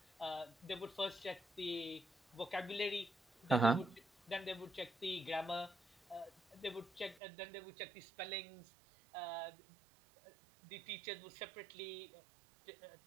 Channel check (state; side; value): drops out; left; at 7.2 s